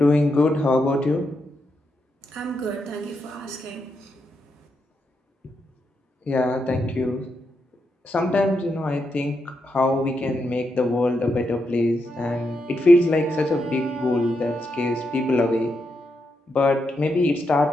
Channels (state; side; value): normal; both; correlation 0.83